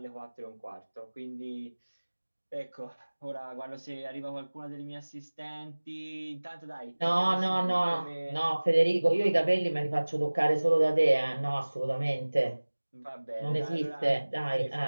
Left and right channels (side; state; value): both; inverted; correlation -1.00